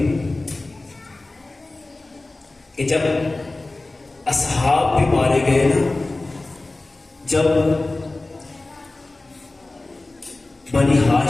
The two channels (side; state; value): right; quieter; 3.0 dB